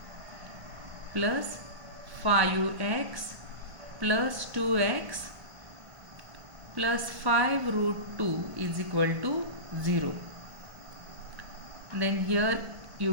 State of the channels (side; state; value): left; late; 1.4 ms